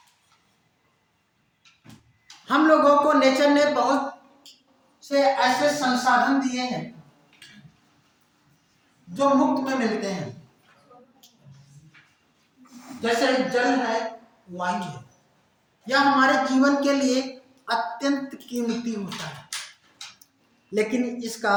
हम लोगों को नेचर ने बहुत से ऐसे संसाधन दिए हैं जो मुफ्त में मिलते हैं, जैसे जल है, वायु है। यह हमारे जीवन के लिए अत्यंत कीमती होता है, लेकिन इसका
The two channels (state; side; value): identical; both; correlation 1.00